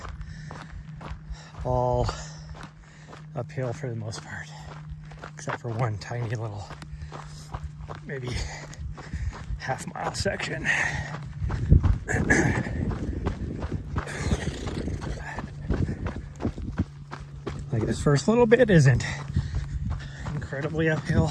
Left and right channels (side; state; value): both; identical; correlation 1.00